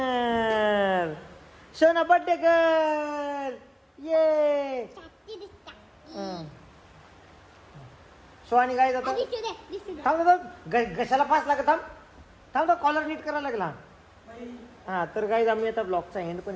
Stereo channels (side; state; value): both; identical; correlation 1.00